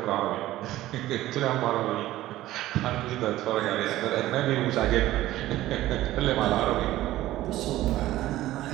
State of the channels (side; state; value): left; quieter; 15.4 dB